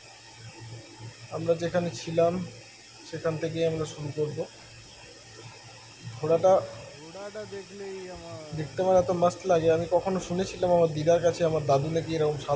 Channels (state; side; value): identical; both; correlation 1.00